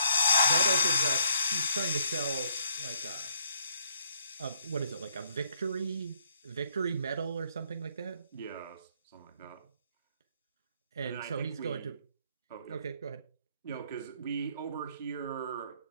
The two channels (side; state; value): both; inverted; correlation -0.70